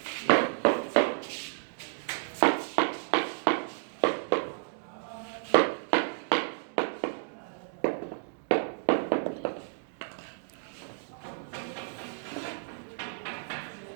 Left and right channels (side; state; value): left; silent; digital silence